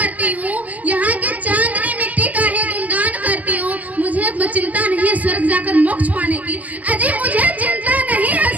हूँ, यहाँ की चांदनी मिट्टी का ही गुणगान करती हूँ। मुझे चिंता नहीं है स्वर्ग जाकर मोक्ष पाने की। अजी मुझे चिंता नहीं है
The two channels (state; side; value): late; left; 0.078 ms